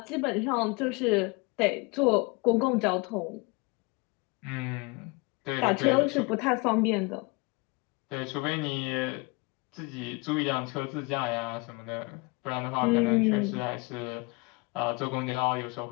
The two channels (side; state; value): right; quieter; 27.6 dB